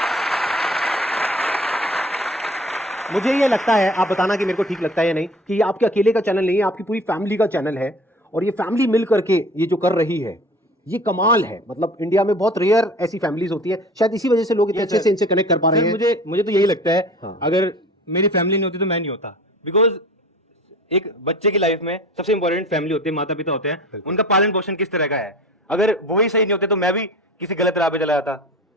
मुझे ये लगता है, आप बताना कि मेरे को ठीक लगता है या नहीं, कि ये आपके अकेले का चैनल नहीं है, आपकी पूरी फैमिली का चैनल है। और ये फैमिली मिल करके ये जो कर रही है ये कमाल है। मतलब इंडिया में बहुत रेयर ऐसी फैमिलीज होती है, शायद इसी वजह से लोग इतने अच्छे से इनसे कनेक्ट कर पा रहे हैं। मुझे तो यही लगता है, हाँ। अगर मेरी फैमिली नहीं होती तो मैं नहीं होता। बिकॉज एक बच्चे की लाइफ में सबसे इंपॉर्टेंट फैमिली होती है, माता पिता होते हैं, उनका पालन पोषण किस तरह का है। अगर वो ही सही नहीं होते तो मैं भी किसी गलत राह पे चला जाता।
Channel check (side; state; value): both; normal; correlation 0.43